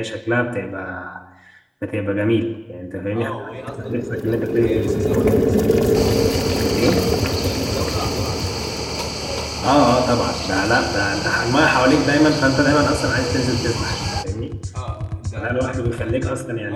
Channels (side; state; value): both; identical; correlation 1.00